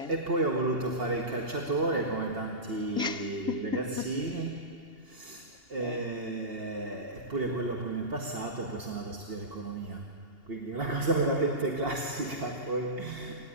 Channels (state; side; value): late; left; 2.8 ms